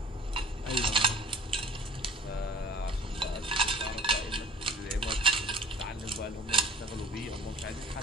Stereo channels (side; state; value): both; normal; correlation 0.49